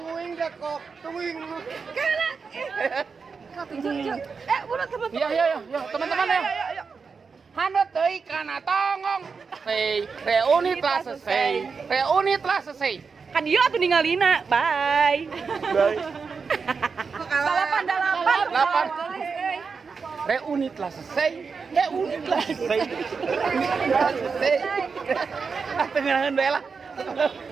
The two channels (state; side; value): quieter; left; 5.2 dB